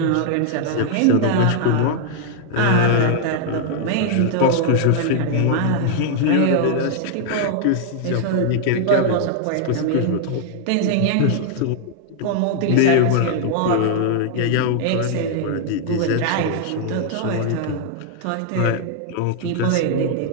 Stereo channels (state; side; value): different; both; correlation 0.00